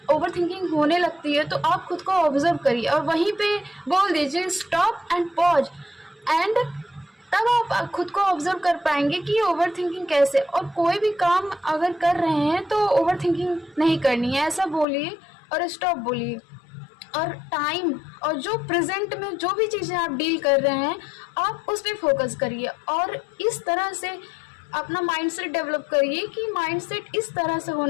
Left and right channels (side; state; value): right; drops out; at 14.9 s